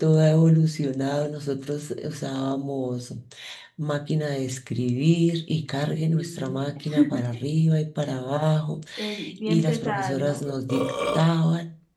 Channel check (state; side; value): identical; both; correlation 1.00